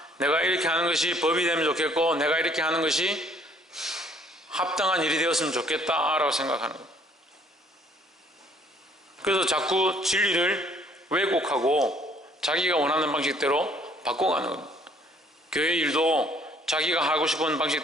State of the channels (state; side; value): normal; both; correlation 0.61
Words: 내가 이렇게 하는 것이 법이 되면 좋겠고 내가 이렇게 하는 것이 합당한 일이 되었으면 좋겠다라고 생각하는 겁니다. 그래서 자꾸 진리를 왜곡하고 자기가 원하는 방식대로 바꿔가는 겁니다. 교회 일도 자기가 하고 싶은